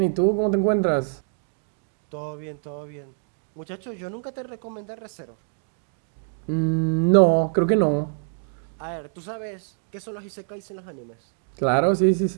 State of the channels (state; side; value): silent; left; digital silence